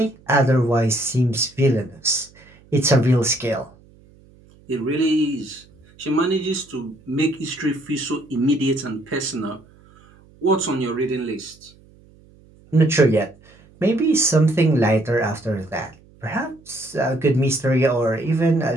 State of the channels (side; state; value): right; noise; hum, 27 dB below the sound